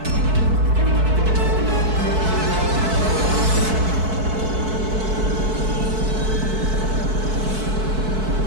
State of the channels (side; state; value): left; late; 4.6 ms